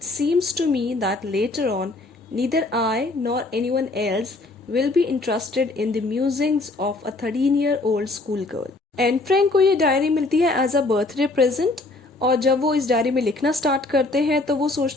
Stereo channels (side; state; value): right; quieter; 3.1 dB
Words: seems to me that later on, neither I nor anyone else will be interested in the musings of a 13-year-old schoolgirl. Anne Frank को ये diary मिलती है as a birthday present, और जब वो इस diary में लिखना स्टार्ट करते हैं तो वो